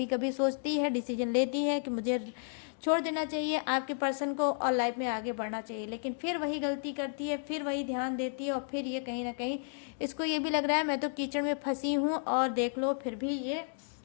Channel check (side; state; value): right; silent; digital silence